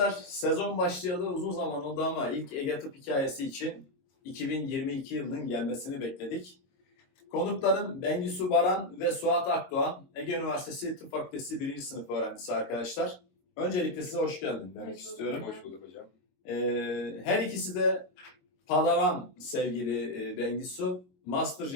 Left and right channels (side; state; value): right; late; 22 ms